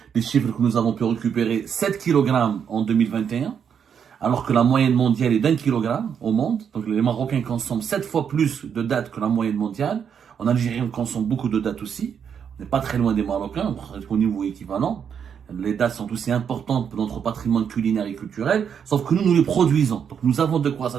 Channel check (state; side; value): quieter; left; 7.6 dB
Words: les chiffres que nous avons pu récupérer, 7 kg en 2021, alors que la moyenne mondiale est d'1 kg au monde. Donc les Marocains consomment 7 fois plus de dattes que la moyenne mondiale. En Algérie, on consomme beaucoup de dattes aussi. On n'est pas très loin des Marocains, au niveau équivalent. Les dattes sont aussi importantes pour notre patrimoine culinaire et culturel, sauf que nous les produisons. Donc nous avons de quoi